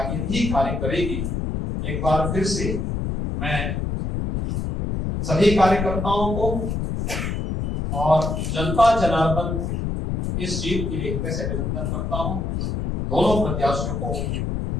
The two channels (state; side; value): noise; left; rumble, 2 dB below the sound